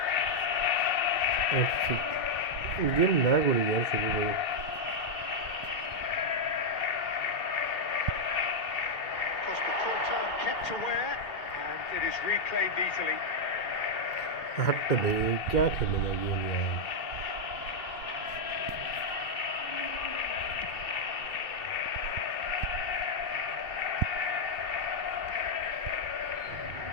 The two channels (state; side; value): late; right; 2.2 ms